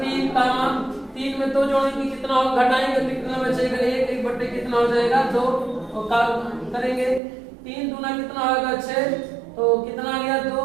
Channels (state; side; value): drops out; left; at 7.2 s